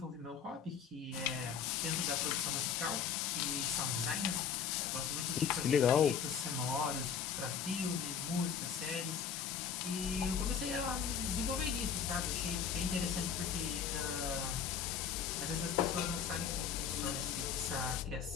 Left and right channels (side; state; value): right; quieter; 7.2 dB